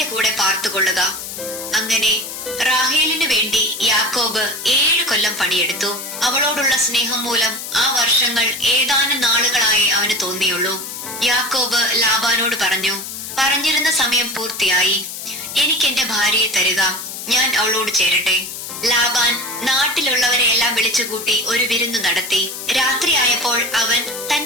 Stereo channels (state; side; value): noise; left; hiss, 8 dB below the sound